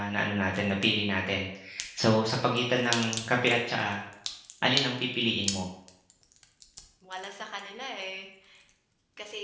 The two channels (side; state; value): both; identical; correlation 1.00